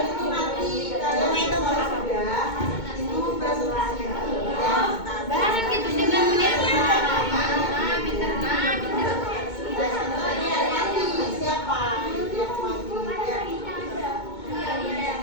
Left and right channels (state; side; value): late; right; 2.2 ms